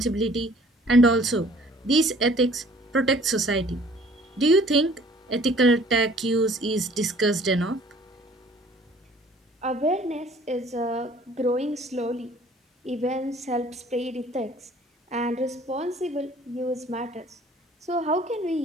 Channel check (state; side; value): normal; both; correlation 0.54